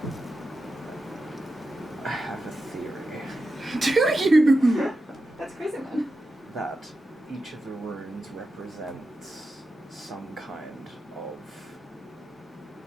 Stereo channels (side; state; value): both; normal; correlation 0.90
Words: I have a theory Do you? That's crazy, man. that each of the runes represents some kind of